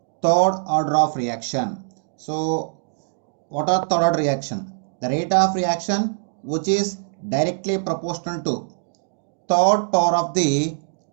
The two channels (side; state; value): left; silent; digital silence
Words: third order of reaction. So, what are third order reaction? The rate of reaction which is directly proportional to third power of the